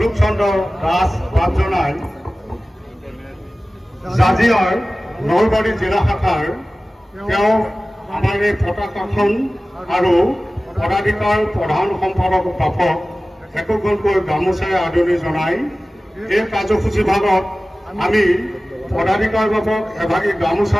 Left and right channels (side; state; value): both; normal; correlation 0.97